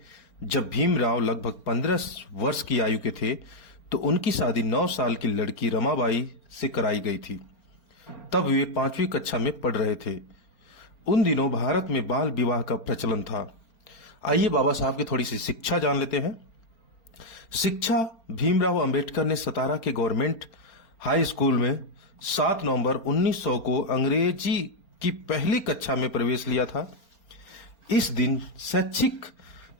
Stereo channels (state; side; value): late; right; 4.4 ms